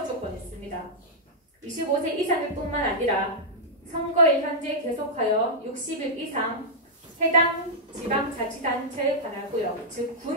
조건이 있습니다. 25세 이상일 뿐만 아니라 선거일 현재 계속하여 60일 이상 해당 지방자치단체에 관할구역, 즉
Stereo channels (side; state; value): both; normal; correlation -0.08